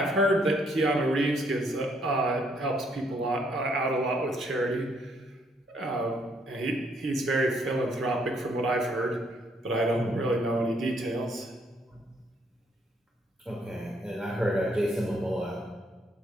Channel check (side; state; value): both; normal; correlation 0.69